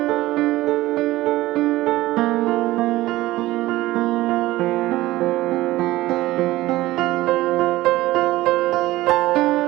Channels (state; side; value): quieter; left; 17.4 dB